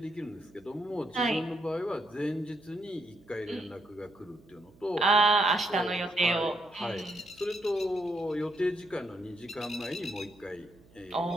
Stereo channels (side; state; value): right; noise; hum, 27 dB below the sound